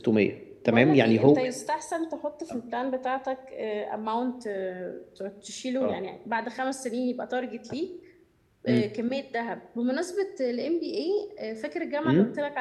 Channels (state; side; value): identical; both; correlation 1.00